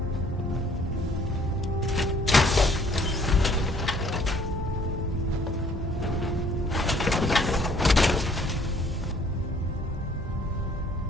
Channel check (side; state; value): both; normal; correlation 0.59